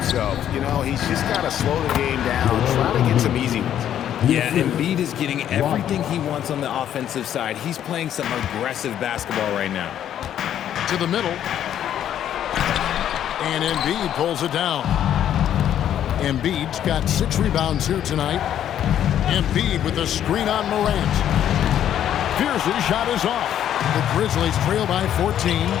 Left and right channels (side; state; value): right; quieter; 10.5 dB